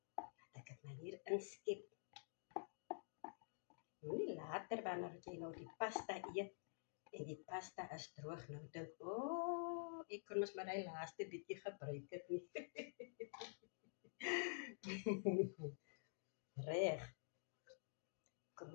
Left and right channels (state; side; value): silent; right; digital silence